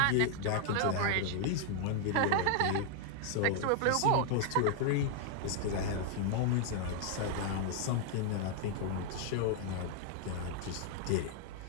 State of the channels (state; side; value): different; both; correlation 0.00